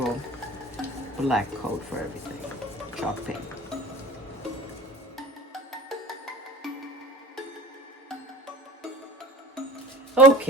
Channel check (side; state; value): both; normal; correlation 0.39